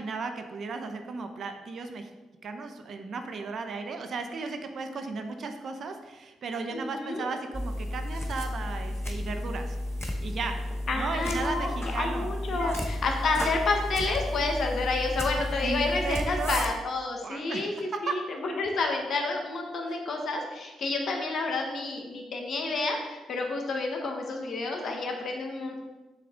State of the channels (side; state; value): both; normal; correlation 0.78